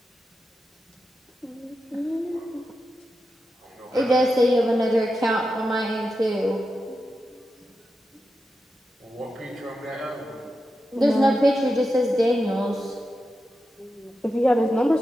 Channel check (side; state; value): both; normal; correlation 0.89